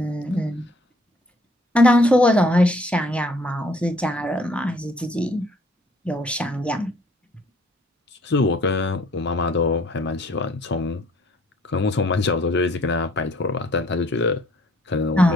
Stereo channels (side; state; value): both; normal; correlation 0.60